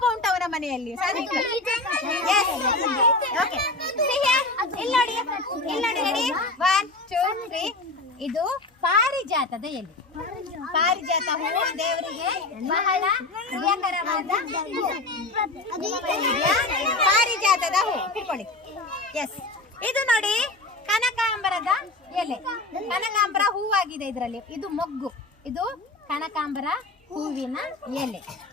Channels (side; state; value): right; quieter; 3.0 dB